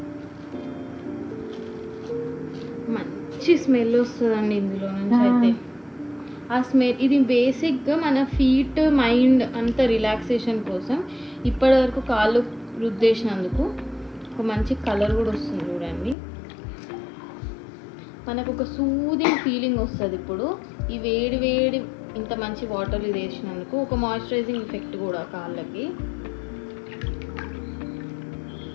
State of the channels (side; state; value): right; drops out; at 16.2 s